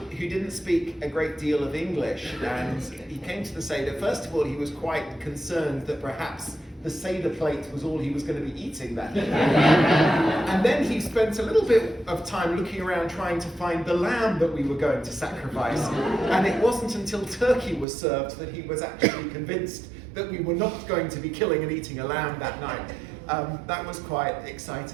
didn't speak a great deal of English, and he came to the Seder. First of all, he was quite concerned that perhaps the Seder plate was all he was going to be eating that day. And then he spent a little bit of time looking around trying to find the lamb that we were going to sacrifice. And it wasn't until turkey was served that he was actually convinced that we were not going to be killing and eating a lamb that night. That was quite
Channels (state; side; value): drops out; left; at 17.9 s